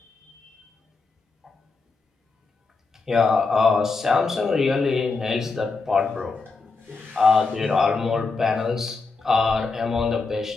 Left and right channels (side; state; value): right; quieter; 4.1 dB